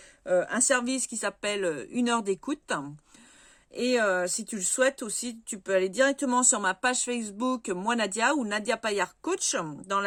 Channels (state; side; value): identical; both; correlation 1.00